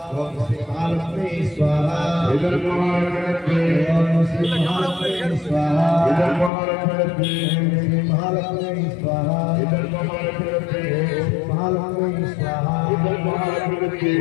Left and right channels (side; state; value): right; drops out; at 6.5 s